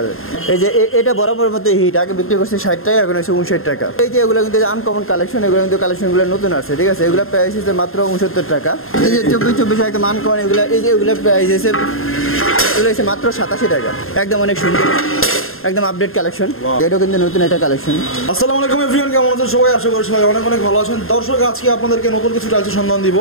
যায়। এই যে এটা বরাবর মতো হিট, আগে বিক্রি করছে 60 টাকা, এখন হচ্ছে 59 টাকা। এই যে এগুলো কিন্তু আনকমন কালেকশন, এগুলো কিন্তু কালেকশনগুলো নতুন আছে, ঠিক আছে। এগুলো প্রাইস হচ্ছে মাত্র 69 টাকা। এই যে 24 একদম আনকমন এগুলো, এই যে এগুলো প্রাইস হচ্ছে এগুলো হচ্ছে মাত্র 87 টাকা। একদম অনেক সুন্দর, একদম আপডেট কালেকশন। এটাও কিন্তু নতুন একটা কালেকশন। আসসালামু আলাইকুম এভরিওয়ান, কেমন আছেন সবাই? আশা করি সবাই অনেক অনেক ভালো আছেন। দর্শক, আজকে আপনাদেরকে নতুন কিছু টাইলসের সন্ধান দিব।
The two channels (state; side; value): late; right; 0.61 ms